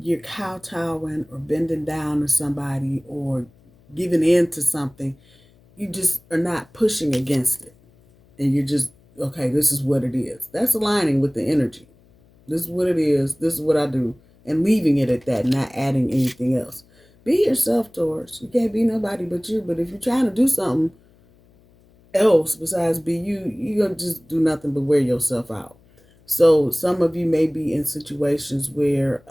you're kowtowing or bending down to somebody or giving in to something. You just are not pushing against it. And you're just, okay, this is what it is. That's aligning with the energy. This is what it is. This is what I do. And leaving it at that, not adding anything else. Be yourself, Taurus. You can't be nobody but you. But if you're trying to do something else besides be you, you're going to just do nothing but wear yourself out. So some of you may be in situations where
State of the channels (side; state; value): left; noise; hum, 30 dB below the sound